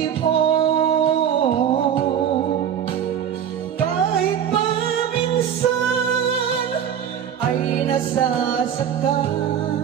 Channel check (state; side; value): quieter; left; 8.9 dB